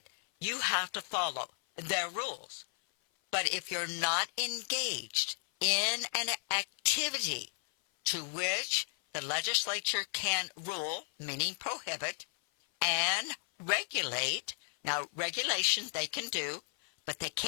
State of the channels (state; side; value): silent; right; 55 dB below the other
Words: you have to follow their rules. But if you're not engaged in an activity to which the legislature can rule, meaning prohibit, and regulate, now regulation they can do, but they